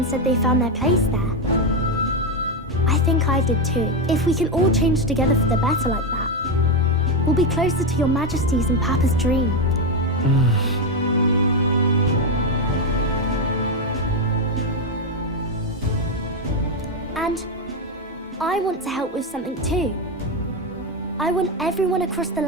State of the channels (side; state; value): both; normal; correlation 0.08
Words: said they found their place there. I think I did too. If we can all change together for the better like that, we'll be closer to your Majesty's and Papa's dream. And I want to help with something too. I want everyone across the